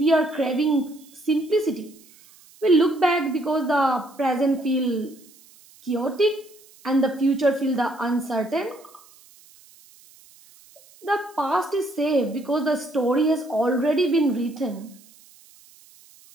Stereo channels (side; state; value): right; noise; hiss, 26 dB below the sound